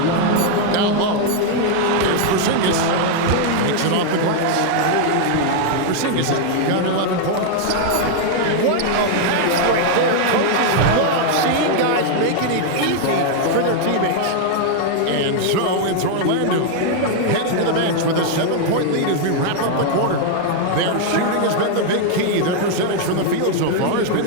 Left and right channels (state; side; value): different; both; correlation 0.00